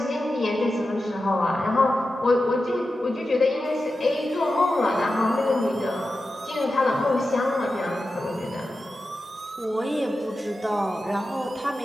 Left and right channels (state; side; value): normal; both; correlation 0.92